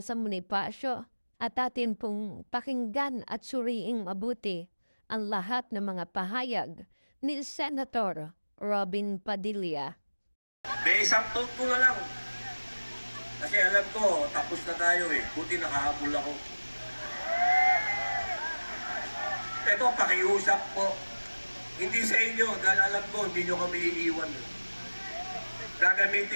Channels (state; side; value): inverted; both; correlation -1.00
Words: Bonifacio at atin pong pakinggan at suriing mabuti ang lahat ng mga pahayag ni Senator Robin Padilla. May isang thought ko na lang. Kasi alam ko, tapos na tayo eh. Buti nakahabol ako. Ito, pakiusap po. Hindi sa inyo, dahil alam ko, hindi nyo kami iiwan.